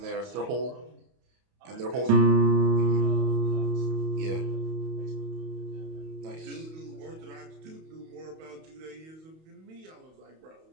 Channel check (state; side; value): late; left; 31 ms